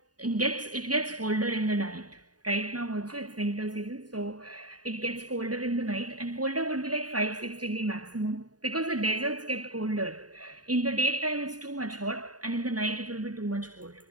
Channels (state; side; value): late; left; 0.68 ms